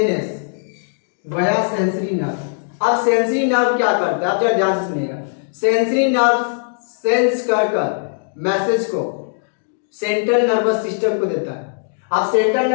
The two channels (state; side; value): silent; right; digital silence